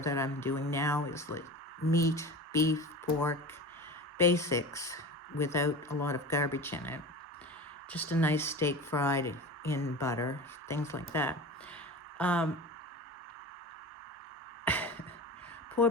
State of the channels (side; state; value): both; normal; correlation 0.32